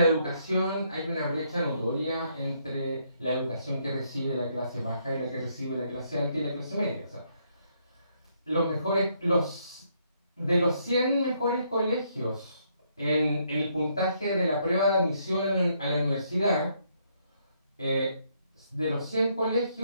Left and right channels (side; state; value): both; inverted; correlation -0.72